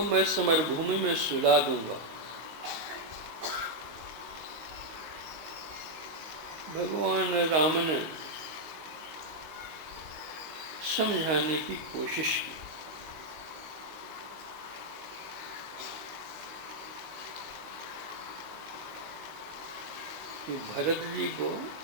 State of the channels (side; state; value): left; late; 19 ms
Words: मैं समरभूमि में सुला दूंगा। भगवान राम ने समझाने की कोशिश की। कि भरत जी को